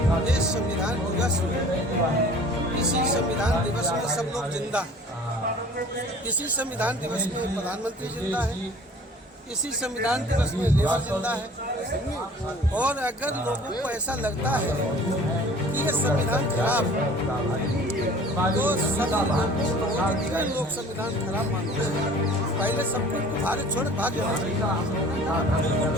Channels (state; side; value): normal; both; correlation 0.48